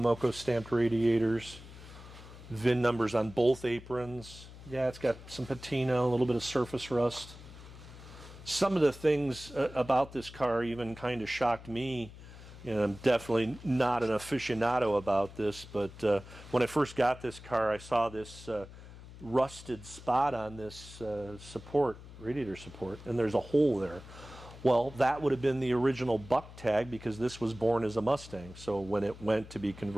stamped radiators, VIN numbers on both aprons. Yeah, it's got some patina, a little bit of surface rust. Some of the things about this car even kind of shocked me. You know, I'm definitely not an aficionado about this, but when I first got this car, I saw this rusted spot on this radiator support, and there's a hole there. Well, that would have been the original buck tag because this was born as a Mustang. So when it went to be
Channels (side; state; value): left; noise; hum, 16 dB below the sound